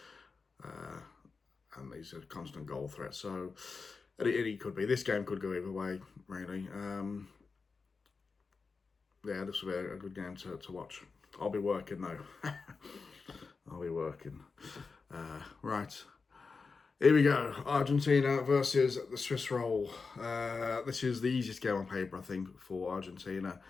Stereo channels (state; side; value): quieter; right; 4.6 dB